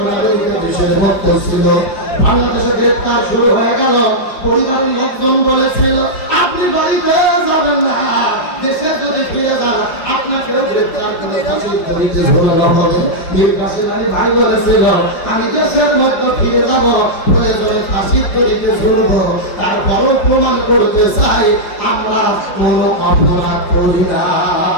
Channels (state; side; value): late; right; 4.9 ms